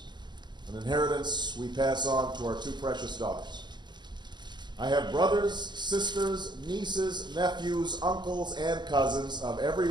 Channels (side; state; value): left; late; 0.21 ms